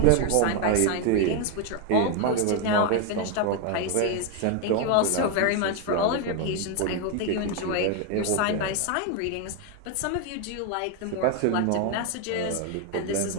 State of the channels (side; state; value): both; different; correlation 0.01